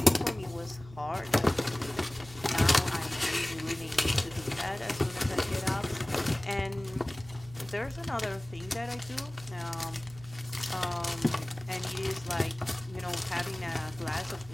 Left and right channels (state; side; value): noise; right; hum, 18 dB below the sound